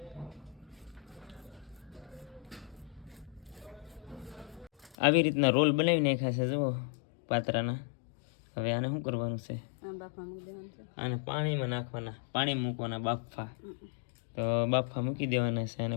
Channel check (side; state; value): right; drops out; at 5.0 s